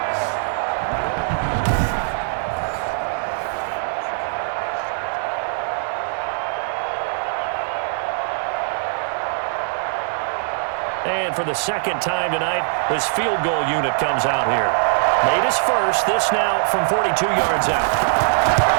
And for the 2nd time tonight, this field goal unit comes out here. Made his first, this now from 42 yards out.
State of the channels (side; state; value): left; silent; digital silence